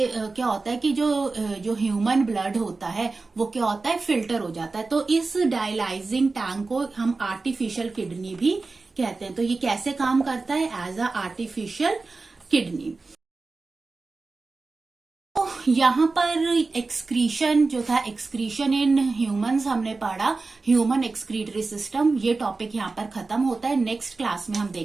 क्या होता है कि जो ह्यूमन ब्लड होता है वो क्या होता है? फिल्टर हो जाता है। तो इस डायलाइजिंग टैंक को हम आर्टिफिशियल किडनी भी कहते हैं। तो ये कैसे काम करता है? As a artificial kidney. यहाँ पर एक्सक्रीशन जो था, एक्सक्रीशन इन ह्यूमंस हमने पढ़ा, ह्यूमन एक्सक्रीटरी सिस्टम, ये टॉपिक यहाँ पर खत्म होता है। नेक्स्ट क्लास में हम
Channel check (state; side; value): quieter; left; 3.8 dB